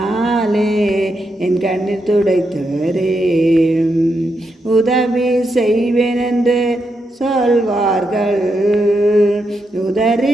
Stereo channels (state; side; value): normal; both; correlation 0.83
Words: என் கண்ணீர் துடைத்தவரே. உதவி செய்வேன் என்று சொல்வார்கள்,